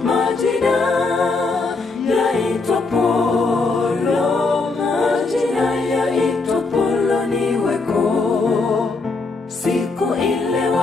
majina yaitwa Polo, majina yaitwa Poloni weko. Siku ile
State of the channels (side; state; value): right; quieter; 3.9 dB